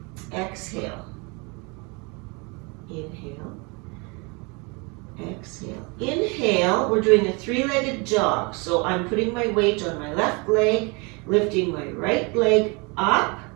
exhale, inhale, exhale. Inhale, we're doing a 3-legged jog. So I'm putting my weight on my left leg, lifting my right leg up,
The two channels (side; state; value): left; quieter; 30.0 dB